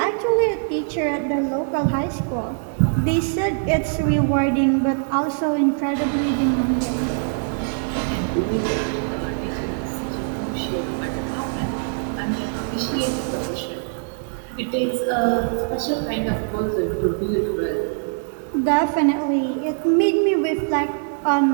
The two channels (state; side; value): silent; left; digital silence